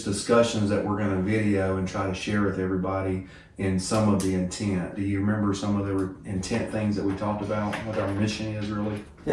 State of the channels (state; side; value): identical; both; correlation 1.00